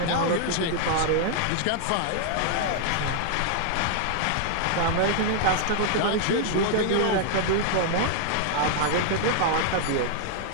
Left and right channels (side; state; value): both; different; correlation -0.01